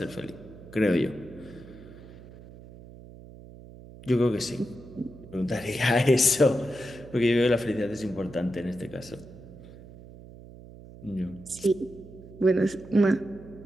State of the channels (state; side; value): noise; right; hum, 18 dB below the sound